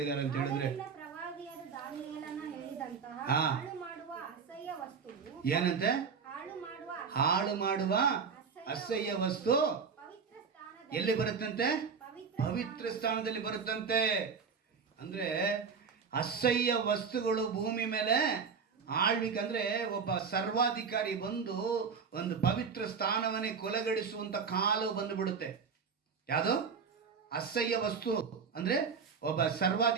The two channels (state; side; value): quieter; left; 5.9 dB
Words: ಅಂತ ಹೇಳಿದ್ರೆ, ಪ್ರವಾದಿಯಾದ ದಾನಿಯೇಲನ ಹೇಳಿದಂತಹ ಹಾ, ಹಾಳು ಮಾಡುವ ಅಸಹ್ಯ ವಸ್ತುವು, ಏನಂತೆ? ಹಾಳು ಮಾಡುವ ಅಸಹ್ಯ ವಸ್ತು ಪವಿತ್ರ ಸ್ಥಾನದಲ್ಲಿ ಎಲ್ಲಿ ಬರುತ್ತಂತೆ? ಪವಿತ್ರ ಸ್ಥಾನದಲ್ಲಿ ಬರುತ್ತಂತೆ. ಅಂದ್ರೆ ಅಸಹ್ಯ ವಸ್ತುಗಳು ಭೂಮಿ ಮೇಲೆ ಆಳ್ವಿಕಂದ್ರೆ ಒಬ್ಬ ಸರ್ವಾಧಿಕಾರಿ ಬಂದು ಒಂದು ಪವಿತ್ರ ಸ್ಥಾನವನ್ನೇ ಕೊಲೆಗಡಿಸುವಂತ ಕಾಲು ಬಂದು ಬಿಡುತ್ತೆ. ಯಾವುದು? ಅಸಹ್ಯ ವಸ್ತು ಅಂದ್ರೆ ಒಬ್ಬ